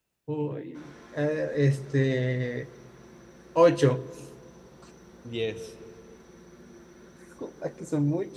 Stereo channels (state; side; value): identical; both; correlation 1.00